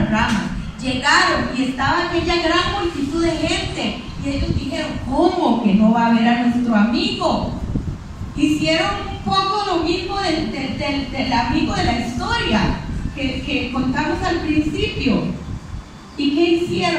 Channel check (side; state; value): both; identical; correlation 1.00